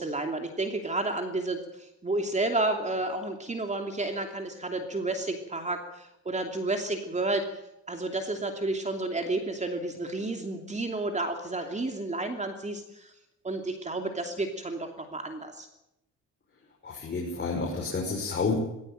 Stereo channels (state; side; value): normal; both; correlation 0.31